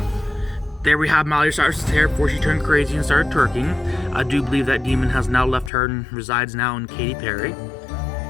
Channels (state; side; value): drops out; right; at 5.7 s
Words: There we have Miley Cyrus's hair before she turned crazy and started twerking. I do believe that demon has now left her and resides now in Katy Perry.